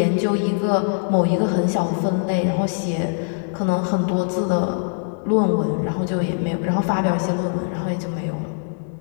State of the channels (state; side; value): silent; right; digital silence